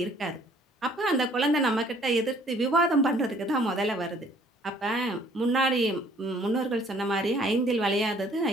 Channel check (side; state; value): both; normal; correlation 0.58